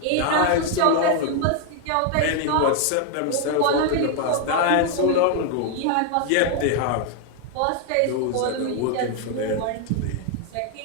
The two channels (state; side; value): different; both; correlation 0.00